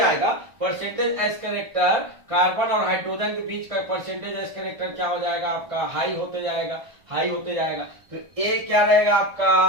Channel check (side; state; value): left; late; 1.4 ms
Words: परसेंटेज एस कैरेक्टर कार्बन और हाइड्रोजन के बीच का परसेंटेज एस कैरेक्टर क्या हो जाएगा आपका, हाई होते जाएगा, हाई होते जाएगा। तो ए क्या रहेगा